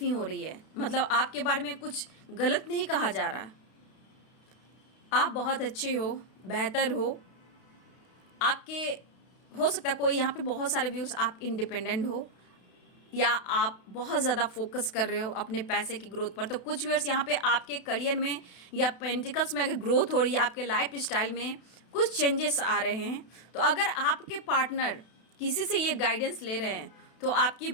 हो रही है, मतलब आपके बारे में कुछ गलत नहीं कहा जा रहा। आप बहुत अच्छे हो, बेहतर हो, आपके हो सकता है कोई यहाँ पे बहुत सारे व्यूज़, आप इंडिपेंडेंट हो या आप बहुत ज़्यादा फोकस कर रहे हो अपने पैसे की ग्रोथ पर। तो कुछ व्यूअर्स यहाँ पे आपके करियर में या पेंटिकल्स में अगर ग्रोथ हो रही है, आपके लाइफ स्टाइल में कुछ चेंजेस आ रहे हैं, तो अगर आपके पार्टनर किसी से ये गाइडेंस ले रहे हैं तो आपकी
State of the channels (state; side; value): late; right; 32 ms